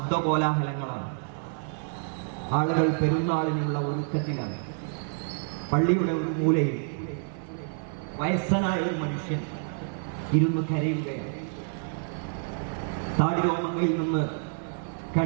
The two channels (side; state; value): left; silent; 59 dB below the other